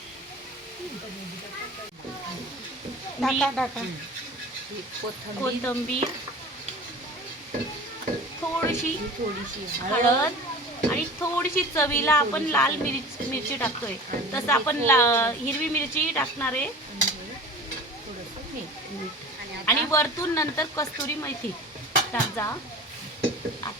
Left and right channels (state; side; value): normal; both; correlation 0.39